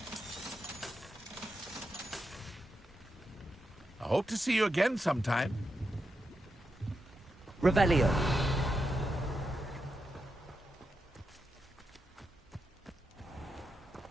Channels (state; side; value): normal; both; correlation 0.86